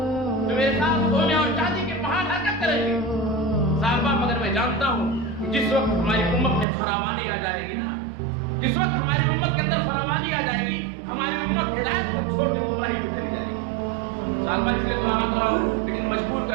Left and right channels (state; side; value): drops out; left; at 6.7 s